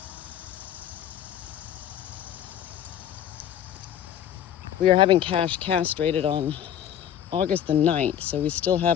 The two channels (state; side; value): quieter; right; 10.2 dB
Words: We are having Cash castrated on August the 9th, so we still